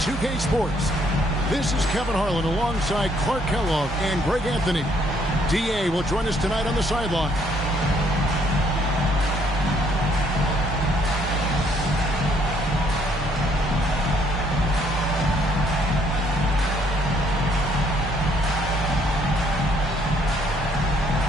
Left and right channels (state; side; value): normal; both; correlation 0.67